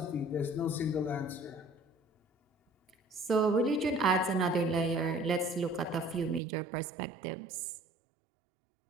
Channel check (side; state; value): left; drops out; at 6.4 s